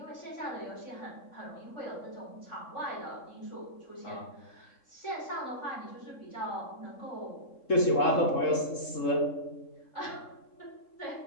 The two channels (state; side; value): late; right; 3.7 ms